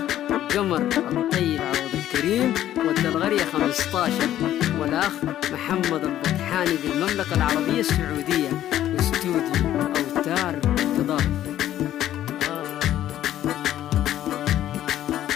قمر الطيب عوض الكريم والدلغرية 15 والأخ محمد البطحاني بالمملكة العربية السعودية. استوديو أوتار تضاف.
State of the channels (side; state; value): right; quieter; 12.4 dB